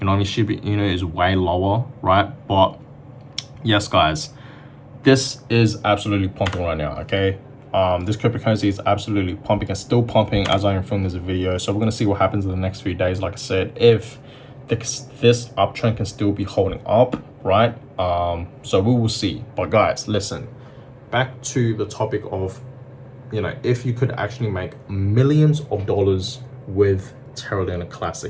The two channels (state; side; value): identical; both; correlation 1.00